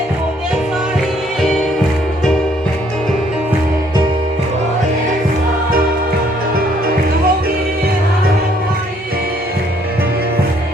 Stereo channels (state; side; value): normal; both; correlation 0.65